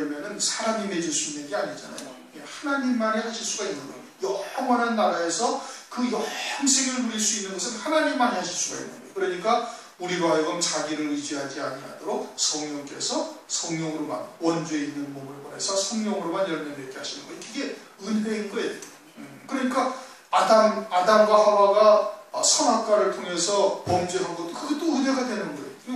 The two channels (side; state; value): both; identical; correlation 1.00